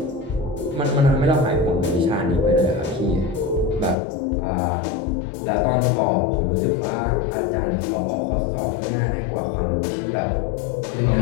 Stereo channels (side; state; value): right; drops out; at 4.0 s